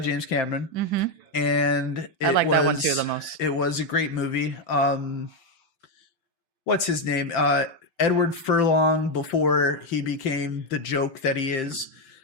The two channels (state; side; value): late; right; 5.9 ms